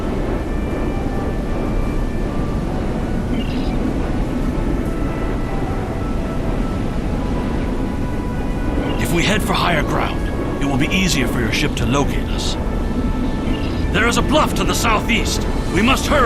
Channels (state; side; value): identical; both; correlation 1.00